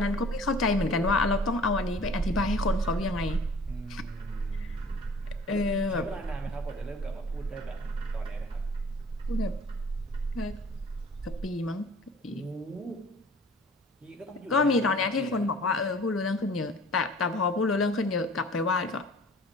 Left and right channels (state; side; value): normal; both; correlation 0.49